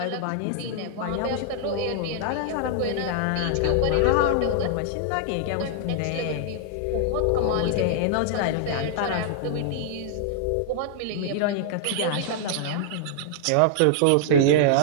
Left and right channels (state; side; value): different; both; correlation -0.01